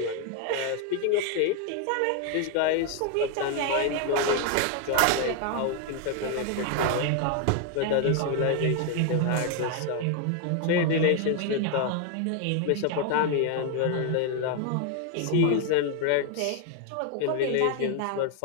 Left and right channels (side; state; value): both; different; correlation 0.01